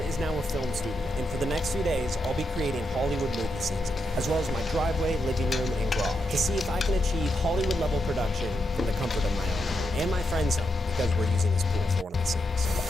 is now a film studio, and for the next few days, I'll be creating Hollywood movie scenes, as well as my driveway, living room, and garage, to see if I can achieve Hollywood-level production from the comfort of my home, and my friend's home, because we're using this pool for one of the scenes.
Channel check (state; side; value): normal; both; correlation 0.83